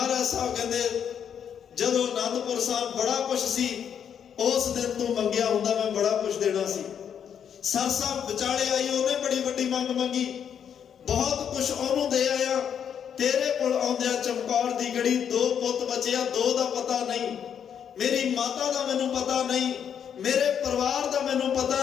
ਸਾਹਿਬ ਕਹਿੰਦੇ ਜਦੋਂ ਅਨੰਦਪੁਰ ਸਾਹਿਬ ਬੜਾ ਕੁਛ ਸੀ, ਉਸ ਦਿਨ ਤੂੰ ਮੰਗਿਆ ਹੁੰਦਾ ਮੈਂ ਬੜਾ ਕੁਛ ਦੇਣਾ ਸੀ। ਸਰ ਸਾਹਿਬ ਵਿਚਾਲੇ ਆਈ, ਉਹਨੇ ਬੜੀ ਵੱਡੀ ਮੰਗ ਮੰਗੀ, ਬਹੁਤ ਕੁਛ ਉਹਨੂੰ ਦੇ ਆਇਆ। ਤੇਰੇ ਕੋਲ ਆਉਂਦਿਆਂ ਚਮਕੌਰ ਦੀ ਗੜੀ 2 ਪੁੱਤ ਬਚਿਆ, 2 ਦਾ ਪਤਾ ਨਹੀਂ, ਮੇਰੀ ਮਾਤਾ ਦਾ ਮੈਨੂੰ ਪਤਾ ਨਹੀਂ, ਮੇਰੇ ਪਰਿਵਾਰ ਦਾ ਮੈਨੂੰ ਪਤਾ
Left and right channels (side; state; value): right; quieter; 8.3 dB